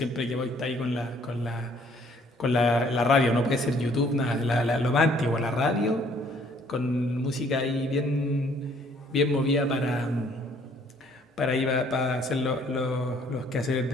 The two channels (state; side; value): normal; both; correlation 0.61